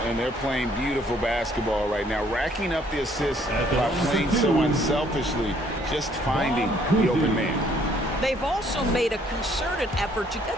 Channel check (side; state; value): both; normal; correlation 0.64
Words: And they're playing beautiful basketball right now, racking up the assists by playing so unselfishly, just finding the open man. They've also made a concerted effort to